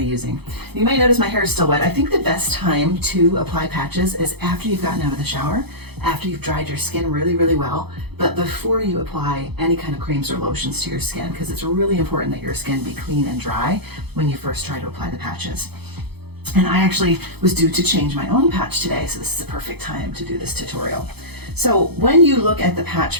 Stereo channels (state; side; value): late; left; 0.98 ms